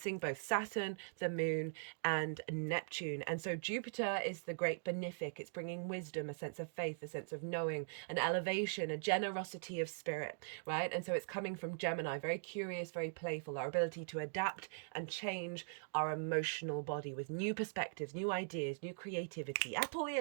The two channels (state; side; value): silent; left; digital silence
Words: both Saturn, the moon, and Neptune. And so Jupiter is the great benefic. It's bringing wisdom, a sense of faith, a sense of knowing, an elevation, a generosity of spirit, right? And so it's coming from Gemini, very curious, very playful, our ability to adapt and change our emotional body with new perspectives, new ideas, new creativity.